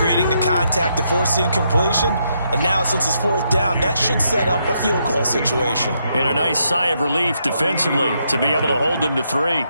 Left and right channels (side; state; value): both; inverted; correlation -0.78